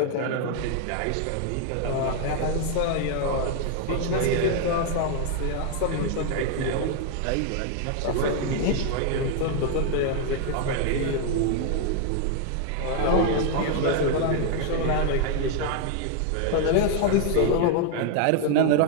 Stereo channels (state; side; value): different; both; correlation 0.00